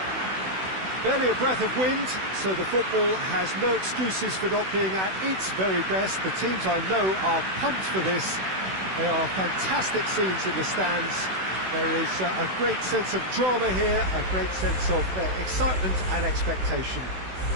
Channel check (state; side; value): late; left; 16 ms